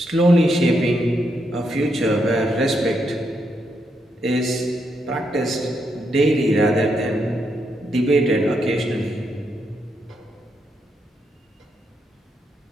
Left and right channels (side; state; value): both; normal; correlation 0.80